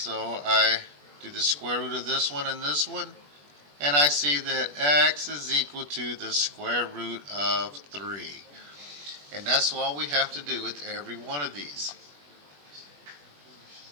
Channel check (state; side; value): late; left; 21 ms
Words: I do the square root of this one and this one. And I see that x is equal to the square root of 3. And that's all we have to do with every one of these.